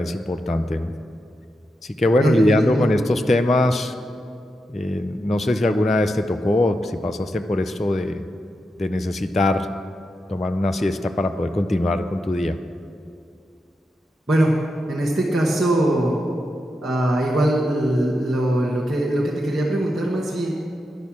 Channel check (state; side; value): normal; both; correlation 0.86